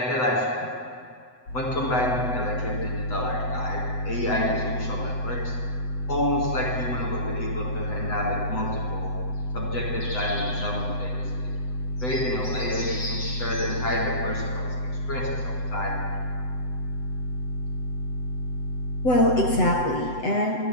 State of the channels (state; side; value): late; right; 7.9 ms